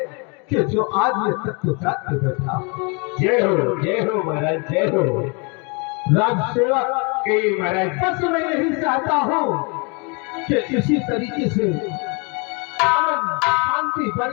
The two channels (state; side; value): quieter; right; 32.2 dB